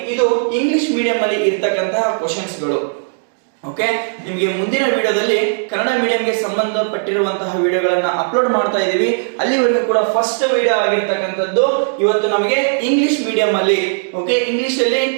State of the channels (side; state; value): left; silent; digital silence